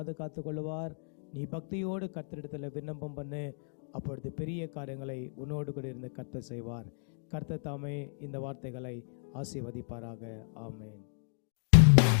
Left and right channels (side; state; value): right; silent; digital silence